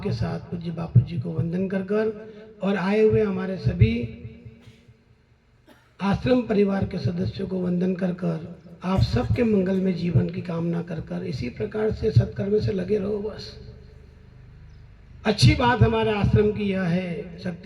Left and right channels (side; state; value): both; identical; correlation 1.00